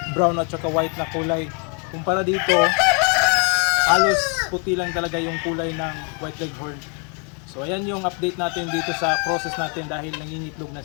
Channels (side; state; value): right; quieter; 37.8 dB